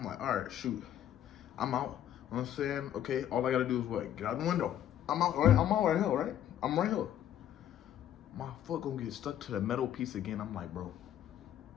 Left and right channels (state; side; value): quieter; right; 11.0 dB